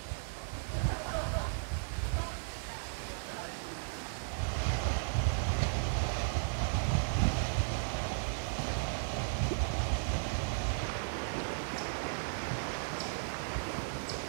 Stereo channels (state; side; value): silent; left; digital silence